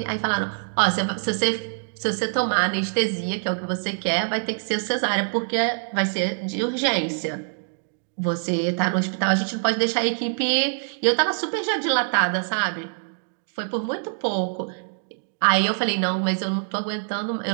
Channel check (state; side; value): silent; left; digital silence